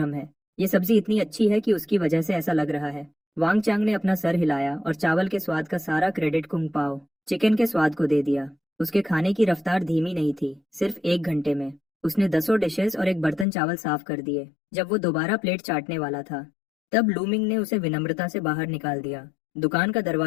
है। ये सब्जी इतनी अच्छी है कि उसकी वजह से ऐसा लग रहा है। वांग चांग ने अपना सर हिलाया और चावल के स्वाद का सारा क्रेडिट कुंग पाओ चिकन के स्वाद को दे दिया। उसके खाने की रफ्तार धीमी नहीं थी। सिर्फ 1 घंटे में उसने 10 डिशेस और एक बर्तन चावल साफ कर दिए। जब वो दोबारा प्लेट चाटने वाला था, तब लूमिंग ने उसे विनम्रता से बाहर निकाल दिया। दुकान का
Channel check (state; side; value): drops out; right; at 13.5 s